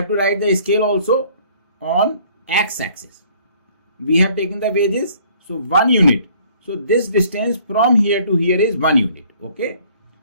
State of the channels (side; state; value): both; inverted; correlation -0.58